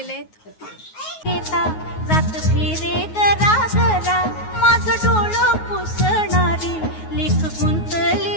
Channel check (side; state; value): right; late; 9.4 ms